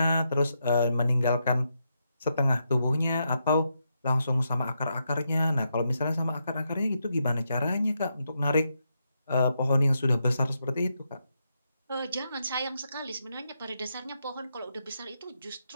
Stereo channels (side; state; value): both; inverted; correlation -0.82